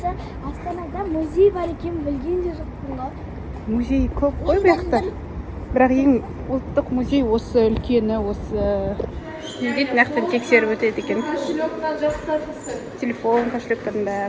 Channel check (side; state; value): both; identical; correlation 1.00